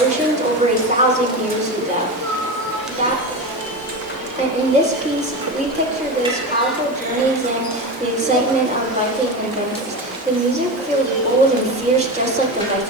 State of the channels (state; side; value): normal; both; correlation 0.22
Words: oceans over 1,000 years ago. And in this piece, we picture those powerful journeys and the excitement of Viking adventures. The music feels bold and fierce, just like the